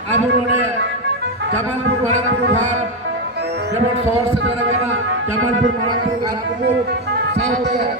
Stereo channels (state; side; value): normal; both; correlation 0.08